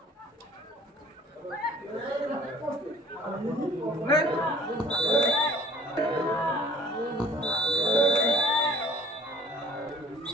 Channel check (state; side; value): normal; both; correlation 0.53